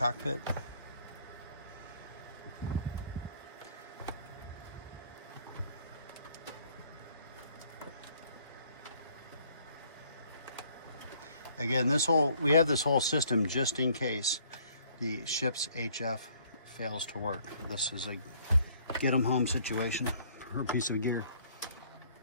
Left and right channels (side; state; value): both; inverted; correlation -0.60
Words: Again, we have this whole system just in case the ship's HF fails to work. This is a get them home situation for a piece of gear.